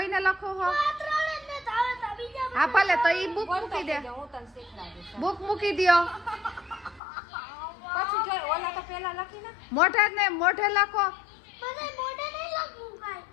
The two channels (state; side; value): drops out; right; at 7.0 s